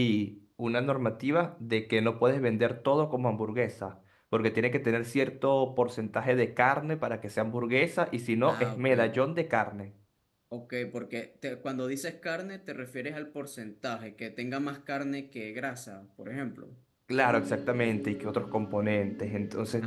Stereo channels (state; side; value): identical; both; correlation 1.00